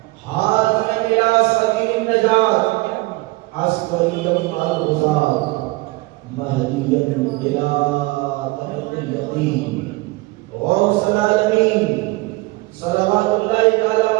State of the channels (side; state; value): left; quieter; 22.5 dB